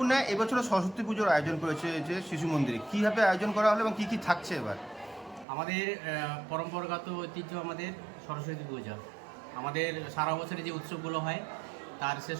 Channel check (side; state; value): left; drops out; at 5.5 s